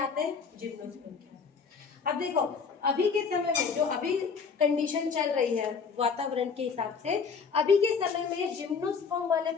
हैं? जिम्नोस्पर्म के। अब देखो अभी के समय में जो अभी कंडीशन चल रही है वातावरण के हिसाब से, अभी के समय में जिम्नोस्पर्म वाले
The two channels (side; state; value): right; quieter; 5.6 dB